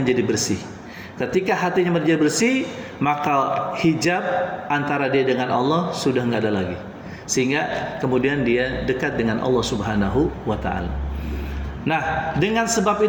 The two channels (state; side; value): identical; both; correlation 1.00